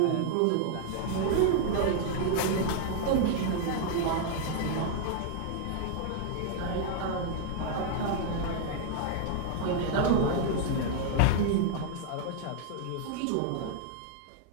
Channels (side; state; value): both; different; correlation 0.00